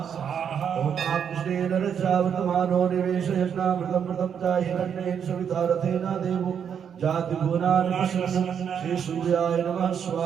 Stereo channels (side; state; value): left; quieter; 7.9 dB